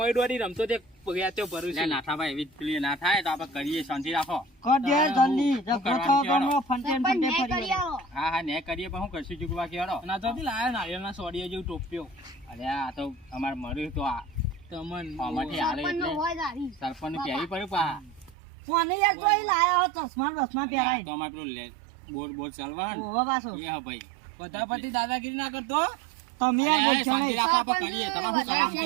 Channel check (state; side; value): drops out; left; at 18.4 s